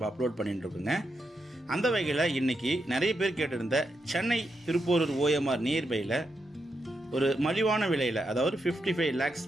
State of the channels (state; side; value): normal; both; correlation 0.84